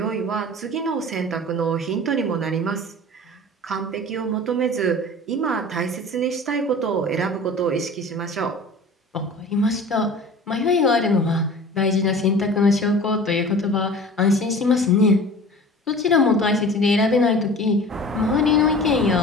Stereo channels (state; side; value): normal; both; correlation 0.40